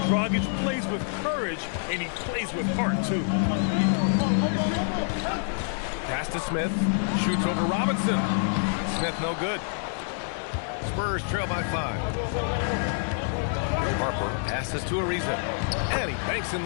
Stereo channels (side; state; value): right; silent; 60 dB below the other